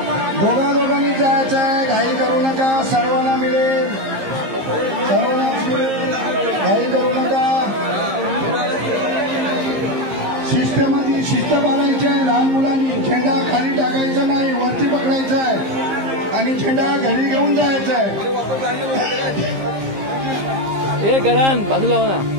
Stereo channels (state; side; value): late; left; 15 ms